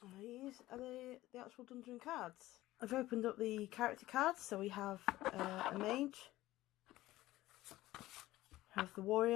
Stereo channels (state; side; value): quieter; right; 16.5 dB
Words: These are the actual dungeon cards. I've opened up the character cards, so we have a mage, we have the